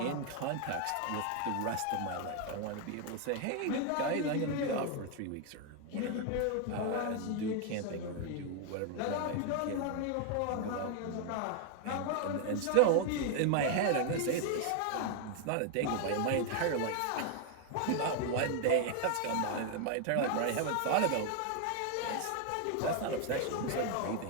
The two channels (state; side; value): different; both; correlation 0.01